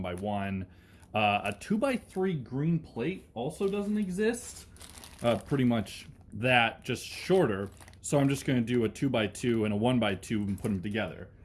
A 2x3 green plate also doesn't exist. Pretty much that, just shorter, so I'm just going to do a 2x2 and a 1x2 and put them together.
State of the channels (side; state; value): both; identical; correlation 1.00